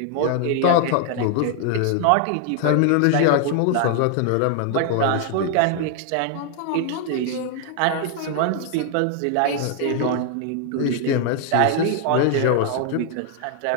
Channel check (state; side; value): different; both; correlation 0.00